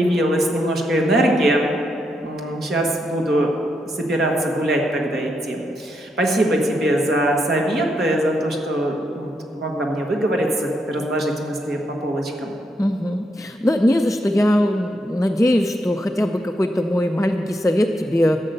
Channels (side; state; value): both; normal; correlation 0.81